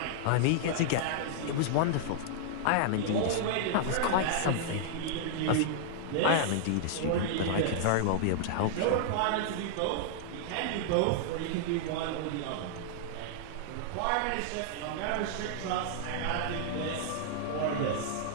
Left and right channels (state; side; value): different; both; correlation -0.01